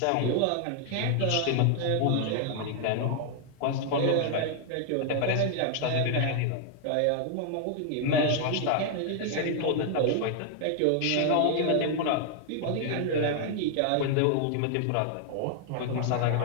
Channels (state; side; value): different; both; correlation 0.00